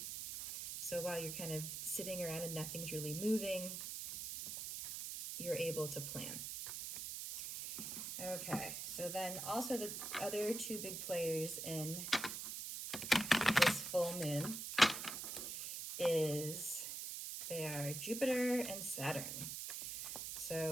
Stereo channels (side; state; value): right; noise; hiss, 5 dB below the sound